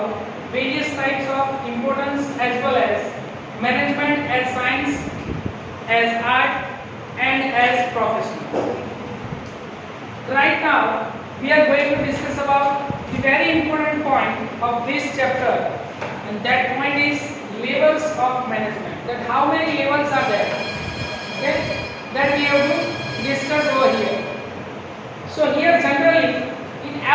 various types of importance as well as management as science, as art and as profession. Right now we are going to discuss about the very important point of this chapter, and that point is levels of management. That how many levels are there? Okay, that we have to discuss over here. So here generally in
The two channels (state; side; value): identical; both; correlation 1.00